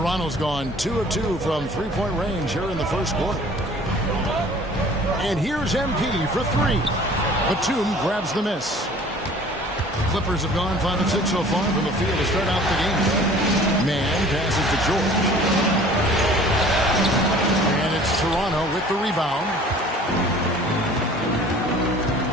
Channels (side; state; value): both; normal; correlation 0.49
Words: gone 2 of 2 from 3-point range here in the first quarter. And here's MP for 3. Batum grabs the miss. The Clippers have gone 5 of 6 so far from the field to start out the game. Man passes to George. And it's Toronto with the rebound.